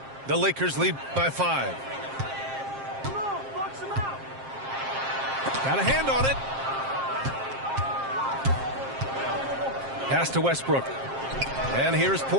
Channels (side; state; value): left; late; 7.5 ms